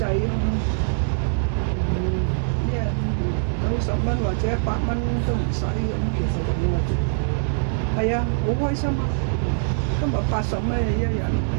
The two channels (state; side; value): silent; left; digital silence